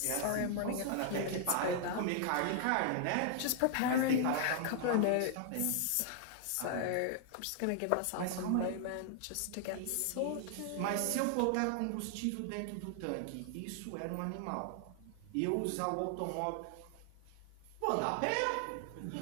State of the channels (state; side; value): different; both; correlation 0.00